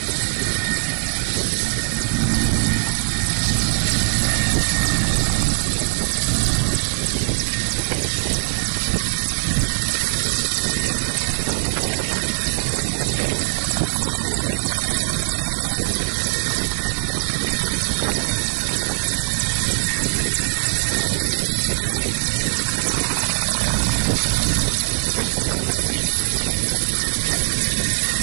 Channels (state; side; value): silent; left; 65 dB below the other